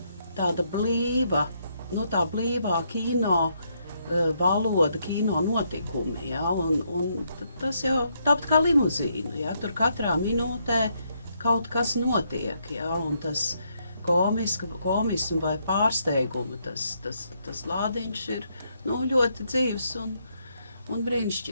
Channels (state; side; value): inverted; both; correlation -0.75